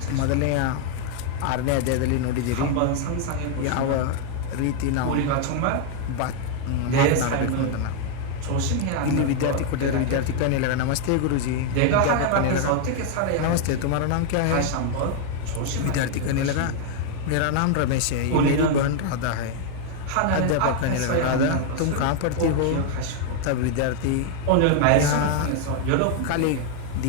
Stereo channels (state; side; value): different; both; correlation 0.00